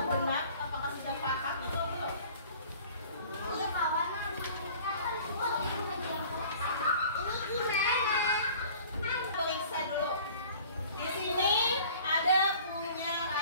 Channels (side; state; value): both; inverted; correlation -0.48